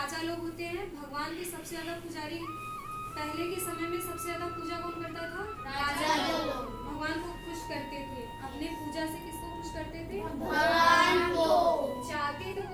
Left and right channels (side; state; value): both; identical; correlation 1.00